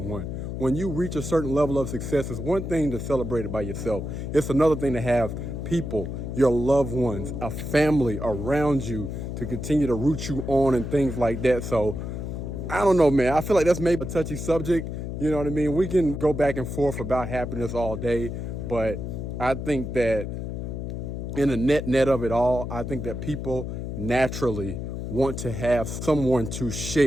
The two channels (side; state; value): left; noise; hum, 5 dB below the sound